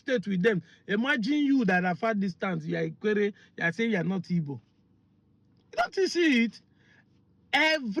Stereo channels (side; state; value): both; identical; correlation 1.00